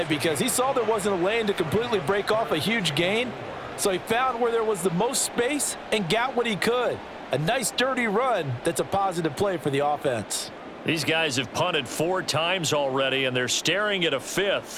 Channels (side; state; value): both; identical; correlation 1.00